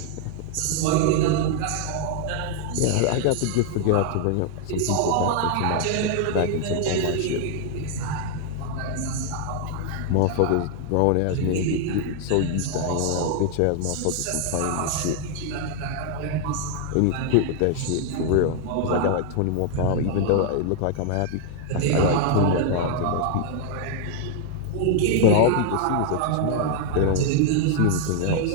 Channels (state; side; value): different; both; correlation 0.00